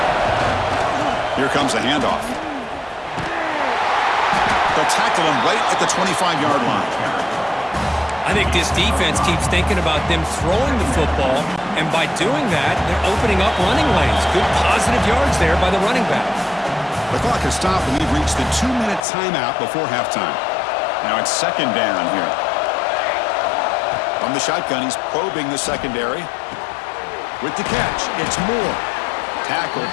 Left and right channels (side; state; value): right; drops out; at 19.0 s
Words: Here comes a handoff. They'll tackle him right at the 25-yard line. I think this defense keeps thinking about them throwing the football, and by doing that, they're opening up running lanes. Good positive yards there by the running back. The clock has stopped, and we've reached the 2-minute timeout before halftime. Now it's second down here. From the shotgun, he's probing the secondary. With the catch, it's Moore. Tackled,